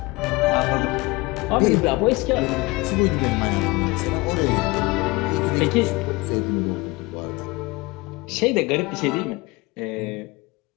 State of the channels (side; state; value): right; quieter; 23.6 dB